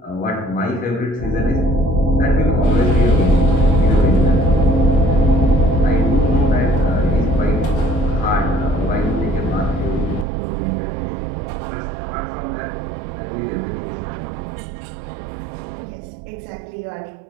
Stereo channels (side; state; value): left; drops out; at 10.2 s